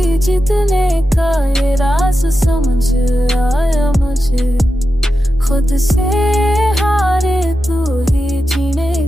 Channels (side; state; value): both; normal; correlation 0.90